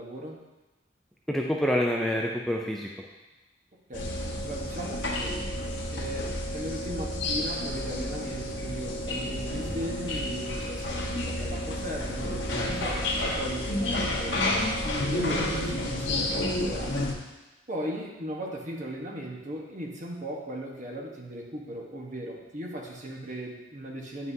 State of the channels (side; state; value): both; normal; correlation 0.48